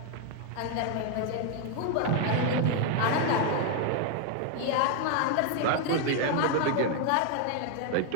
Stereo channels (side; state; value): both; different; correlation 0.01